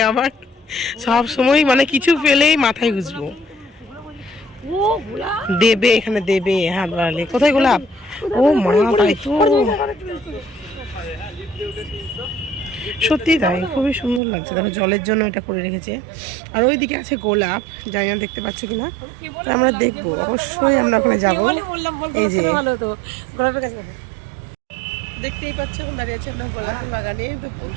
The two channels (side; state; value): left; drops out; at 14.2 s